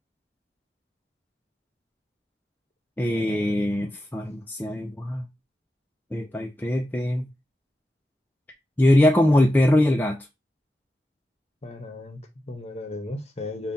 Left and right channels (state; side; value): normal; both; correlation 0.90